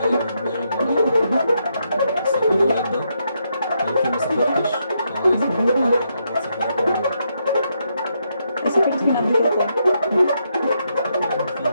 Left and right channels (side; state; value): both; inverted; correlation -0.79